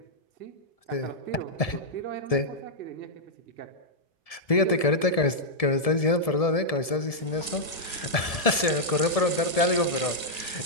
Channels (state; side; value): late; right; 1.6 ms